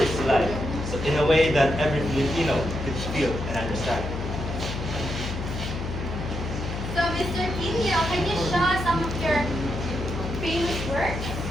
to life, so in a way that every Filipino could feel and understand. So, Mr. Quinio, can you show us some of your famous works?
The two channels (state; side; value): noise; left; hum, 5 dB below the sound